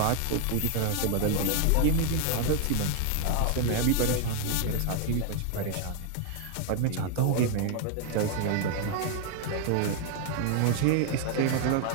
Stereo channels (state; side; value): different; both; correlation 0.00